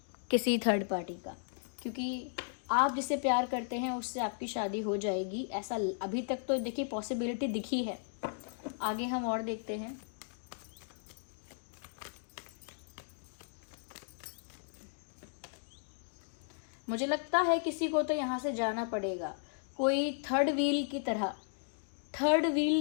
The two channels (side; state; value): right; silent; digital silence